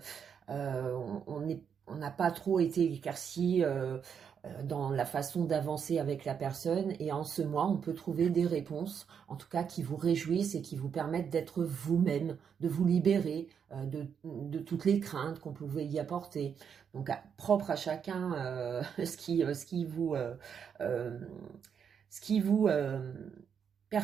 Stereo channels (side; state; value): left; quieter; 7.3 dB